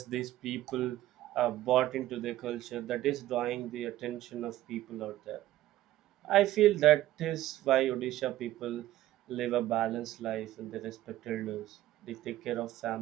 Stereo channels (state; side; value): quieter; left; 14.6 dB